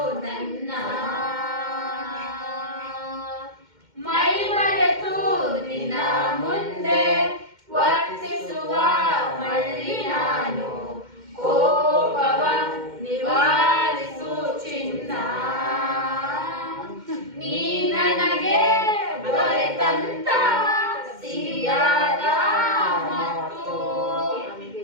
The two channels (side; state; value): left; late; 2.1 ms